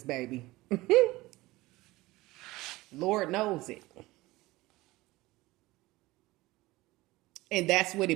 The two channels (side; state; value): left; quieter; 19.5 dB